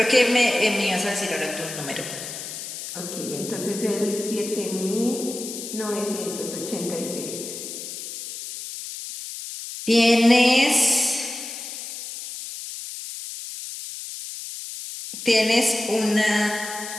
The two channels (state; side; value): noise; left; hiss, 9 dB below the sound